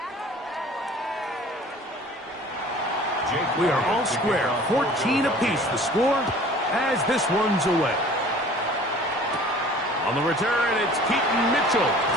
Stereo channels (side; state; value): both; normal; correlation 0.47